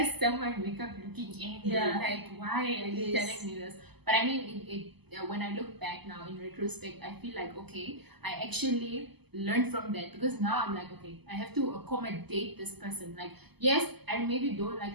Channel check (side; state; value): left; late; 0.98 ms